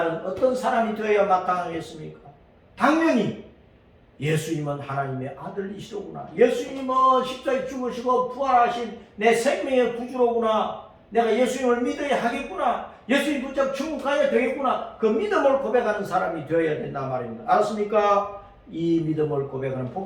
어떤 사람이 되어야 마땅하겠습니까? 당연히 예수님은 하나님의 아들이시로구나, 예수님은 십자가에 죽으시고 부활하신 내 생명의 구주로구나, 내가 예수님을 믿어야 하겠구나, 예수님 붙잡고 천국 가야 되겠구나, 그 믿음을 고백하는 사람이 되어야 된다 말입니다. 알았습니까? 이 믿음을 고백하는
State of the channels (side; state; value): both; identical; correlation 1.00